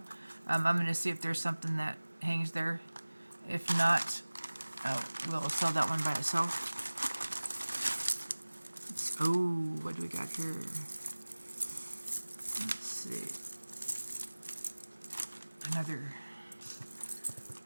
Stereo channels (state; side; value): inverted; both; correlation -1.00